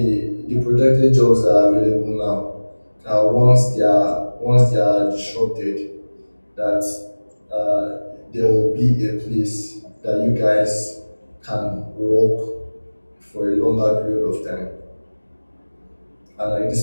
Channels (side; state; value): both; inverted; correlation -1.00